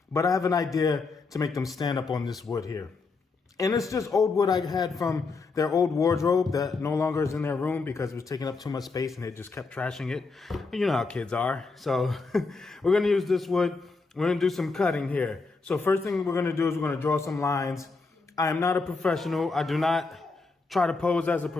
but I have an idea to make them stand up on this wood here. And it's just old wood I had from their old wardrobe that no longer is in their room because it was taking up too much space and they just kept trashing it. You know how kids are. So we're going to use this wood. We're going to do some cutting here. So first thing we're going to do is we're going to draw some lines. I am not a professional. I do not try to pose as a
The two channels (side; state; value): right; quieter; 4.1 dB